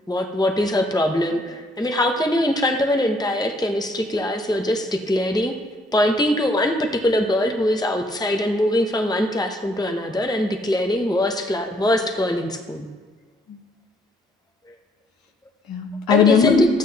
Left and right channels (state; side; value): normal; both; correlation 0.66